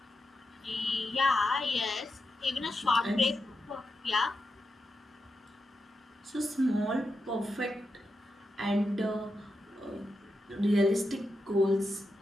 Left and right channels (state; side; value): normal; both; correlation 0.87